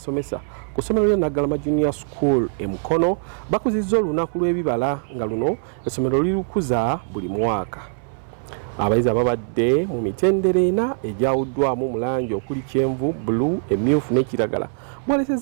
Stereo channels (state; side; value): silent; left; 64 dB below the other